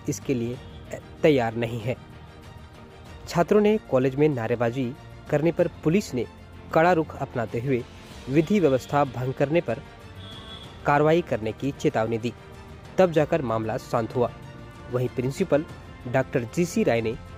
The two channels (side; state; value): both; identical; correlation 1.00